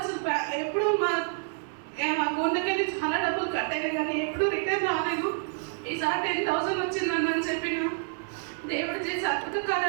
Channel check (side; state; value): left; silent; 59 dB below the other